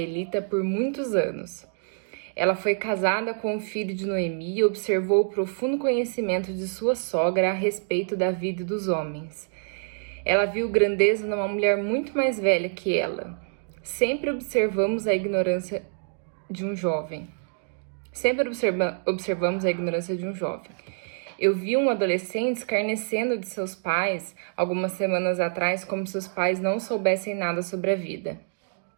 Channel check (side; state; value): left; silent; digital silence